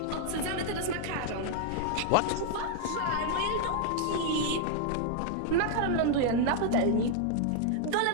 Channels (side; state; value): both; different; correlation 0.00